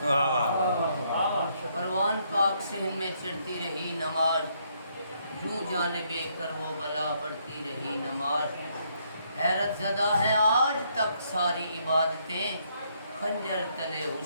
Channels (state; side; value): inverted; both; correlation -0.72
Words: پروان پاک صحن میں چڑھتی رہی نماز، یوں جانب کر وہ بلا بڑھتی رہی نماز۔ حیرت زدہ ہے آج تک ساری عبادتیں، خنجر تلے